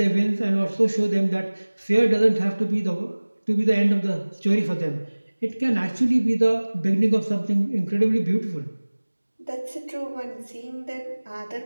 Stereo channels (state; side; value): inverted; both; correlation -1.00